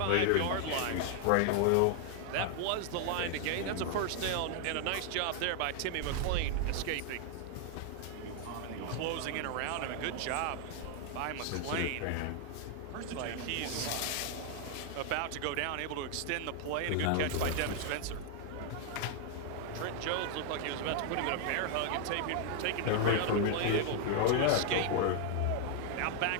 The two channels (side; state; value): both; different; correlation 0.00